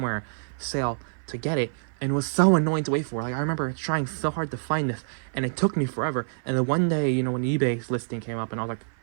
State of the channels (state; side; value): silent; left; 55 dB below the other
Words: sale to get it, and it was so annoying to wait for. Like I remember trying so hard to find this, and it took me forever. And then one day, you know, when eBay's listing came up, and I was like,